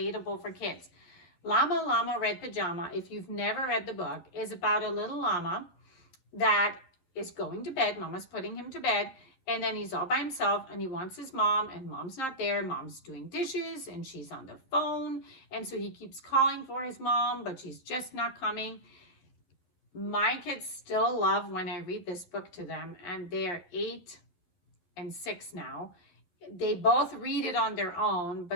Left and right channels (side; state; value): right; late; 11 ms